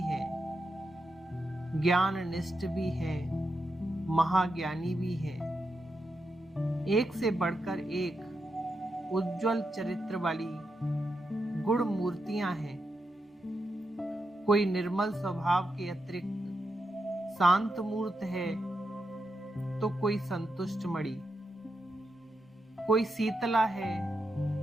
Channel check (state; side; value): normal; both; correlation 0.86